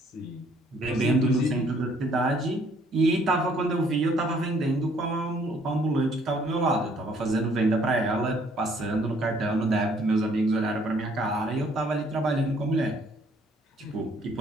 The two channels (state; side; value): normal; both; correlation 0.62